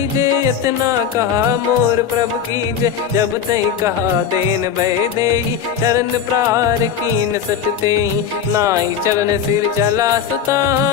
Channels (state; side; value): quieter; right; 8.1 dB